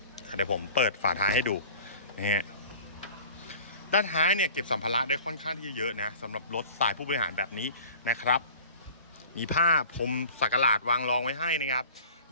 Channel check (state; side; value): inverted; both; correlation -0.44